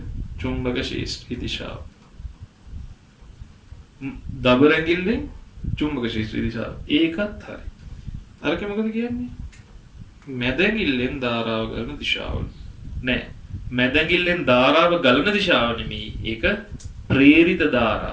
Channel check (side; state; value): both; identical; correlation 1.00